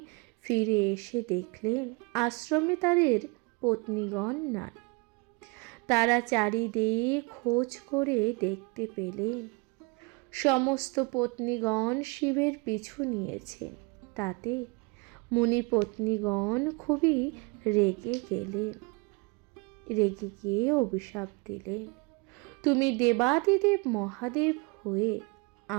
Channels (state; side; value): quieter; left; 29.3 dB